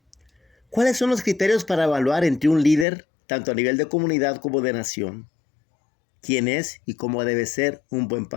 ¿Cuáles son los criterios para evaluar entre un líder, tanto a nivel de comunidad como de nación? ¿Quién es y cómo debe ser un buen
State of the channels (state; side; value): drops out; right; at 2.9 s